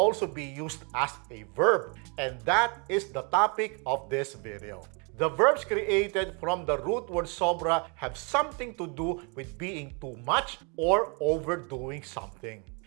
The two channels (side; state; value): left; quieter; 34.3 dB